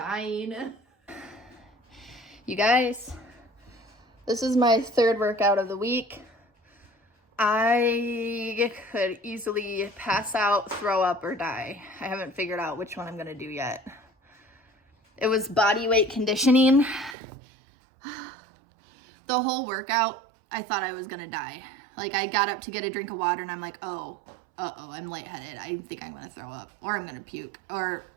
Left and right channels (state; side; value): drops out; left; at 17.2 s